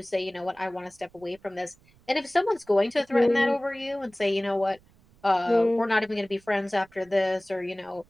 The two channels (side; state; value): right; noise; rumble, 30 dB below the sound